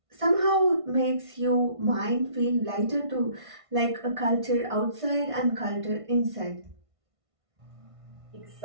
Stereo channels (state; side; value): late; left; 1.5 ms